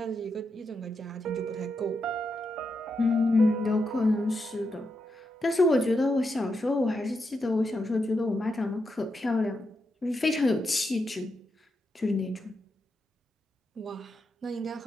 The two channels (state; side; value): normal; both; correlation 0.85